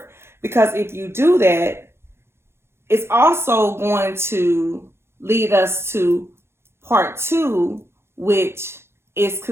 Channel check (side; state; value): left; late; 0.12 ms